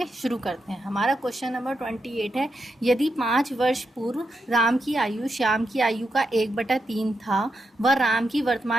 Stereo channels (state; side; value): normal; both; correlation 0.84